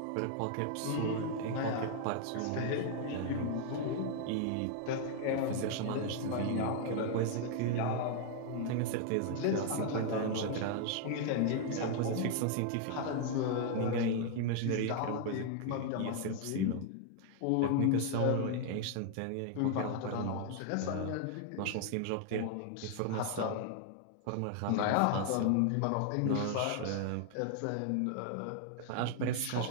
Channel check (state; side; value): different; both; correlation 0.00